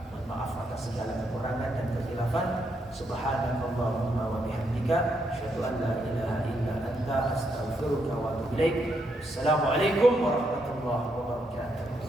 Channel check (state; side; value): normal; both; correlation 0.78